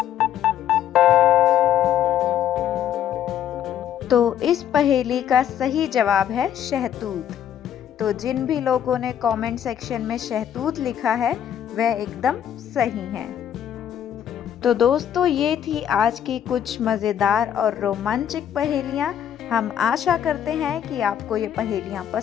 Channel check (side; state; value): right; quieter; 9.9 dB